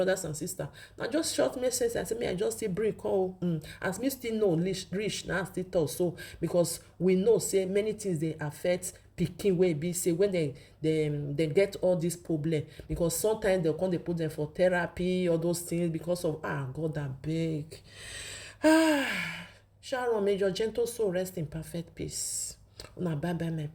and sisters, na just short message I say me I just still bring come as me still know reach na still talk so, because we know say many things dey affect pikin wey be say when they get all this problem, because sometimes they come dey put them for therapy, all those things, because of God abeg. Sharon, may your gentle soul rest in perfect peace. Una bye bye my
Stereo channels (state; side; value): identical; both; correlation 1.00